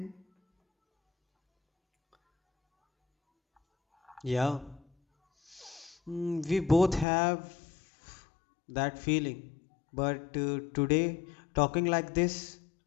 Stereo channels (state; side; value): drops out; right; at 7.1 s